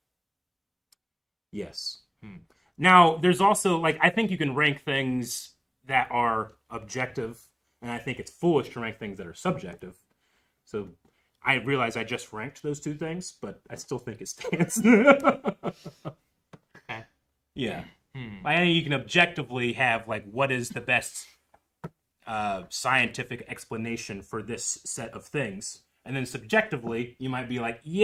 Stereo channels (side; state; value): both; identical; correlation 1.00